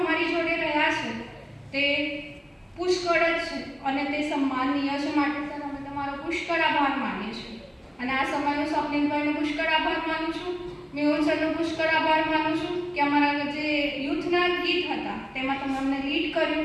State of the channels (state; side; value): identical; both; correlation 1.00